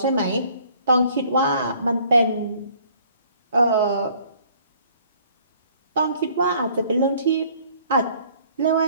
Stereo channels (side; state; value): both; inverted; correlation -0.58